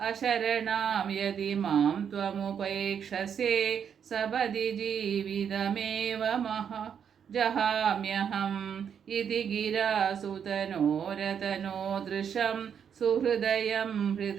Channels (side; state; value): left; quieter; 7.8 dB